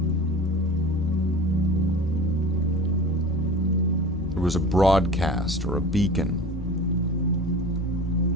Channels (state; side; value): normal; both; correlation 0.37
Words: there was a broadcast or a beacon.